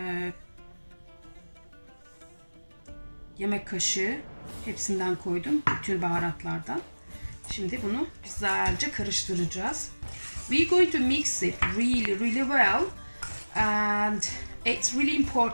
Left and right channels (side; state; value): both; inverted; correlation -1.00